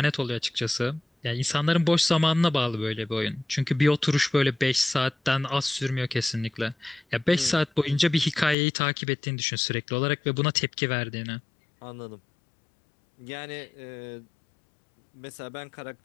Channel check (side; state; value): right; drops out; at 8.6 s